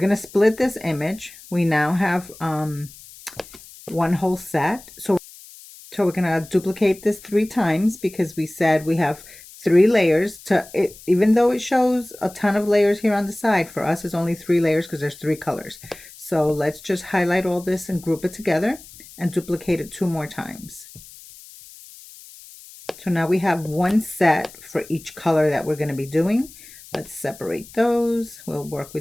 to split this image. We now have one whole set. So we're going to duplicate this 3 times, because we said we have 3 layers to it. Even though it shows a ton of layers here on the side, for us it's only 3 layers because there's 3 colors. So let's just highlight all this and group it together and duplicate it 2 more times. So now we have one set for each color that we're going to be doing. Let's separate those. We'll work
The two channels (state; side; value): noise; left; hiss, 19 dB below the sound